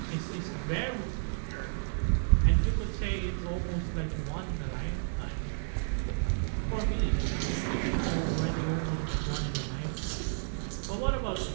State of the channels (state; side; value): silent; left; 57 dB below the other